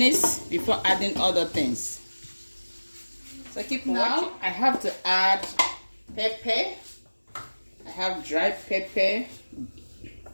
before adding other things. So keep watching. I have to add pepper. I have dry pepper,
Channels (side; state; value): both; inverted; correlation -1.00